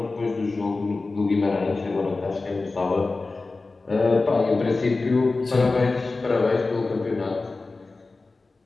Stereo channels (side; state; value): right; quieter; 3.6 dB